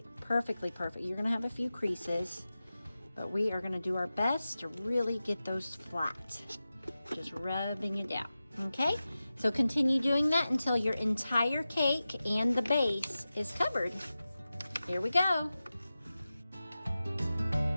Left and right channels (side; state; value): both; inverted; correlation -0.94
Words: perfectly perfect. You're going to have a few creases, but we are going to do our best to really get those flat. Just rubbing it down. Okay, so continue doing that until your entire cake and the base is covered. Here we go.